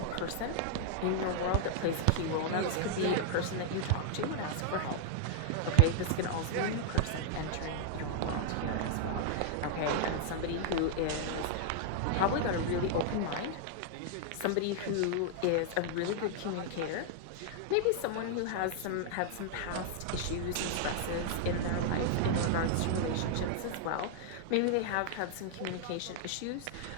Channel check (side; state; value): both; different; correlation -0.01